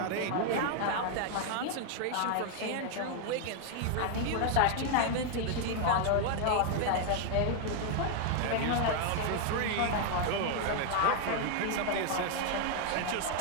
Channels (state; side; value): different; both; correlation 0.00